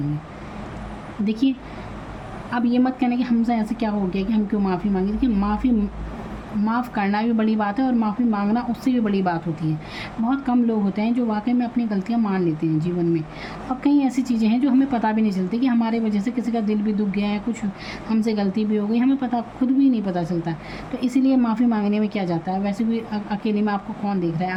देखिए अब ये मत कहना कि हमसे ऐसे क्या हो गया कि हम क्यों माफ़ी मांगे। देखिए, माफ़ करना भी बड़ी बात है और माफ़ी मांगना उससे भी बड़ी बात होती है। बहुत कम लोग होते हैं जो वाकई में अपनी गलतियाँ मान लेते हैं जीवन में, और कई ऐसी चीज़ें हैं जो हमें पता भी नहीं चलती कि हमारे वजह से किसी का दिल भी दुख गया है, कुछ हमसे गलती भी हो गई, हमें पता खुद भी नहीं पता चलता। तो इसीलिए माफ़ी मांगने में क्या जाता है, वैसे भी अकेले में आपको कौन देख रहा है,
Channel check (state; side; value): identical; both; correlation 1.00